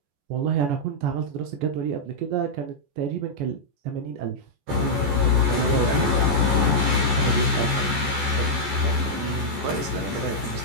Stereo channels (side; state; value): left; late; 14 ms